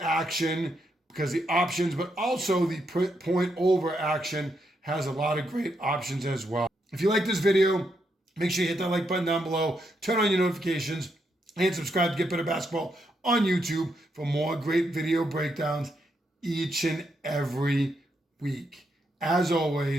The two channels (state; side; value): normal; both; correlation 0.80